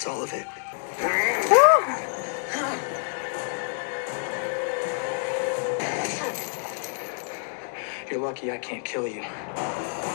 all of it. You're lucky I can't kill you.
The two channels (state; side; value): silent; right; 60 dB below the other